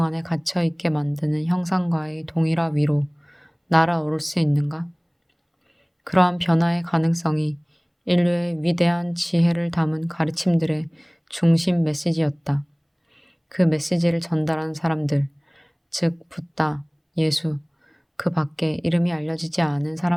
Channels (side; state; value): both; identical; correlation 1.00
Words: 안에 갇혀 있게 만드는 형상과의 동일화 위로 날아오를 수 있는가? 그러한 변화의 가능성이 인류의 위대한 지혜를 담은 가르침들의 중심 메시지였다. 그 메시지를 전달한 사람들, 즉 붓다, 예수, 그 밖에 이름이 알려지지 않은